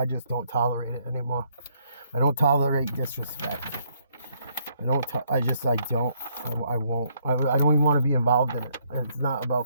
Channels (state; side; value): inverted; both; correlation -0.70